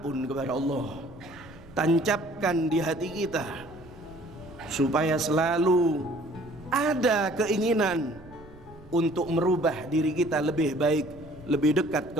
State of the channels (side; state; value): right; noise; rumble, 22 dB below the sound